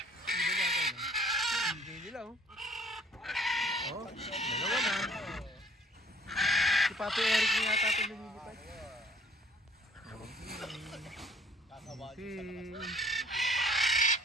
Hindi ba natin, no? Hindi nila, oh. Oh, dalawa na. Si Papi Eric niya yata ito lumilipad.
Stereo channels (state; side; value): normal; both; correlation 0.57